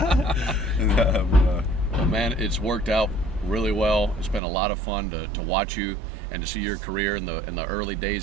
Well, man, it's worked out really well. It's been a lot of fun to watch you and to see your career in the early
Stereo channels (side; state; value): left; drops out; at 4.4 s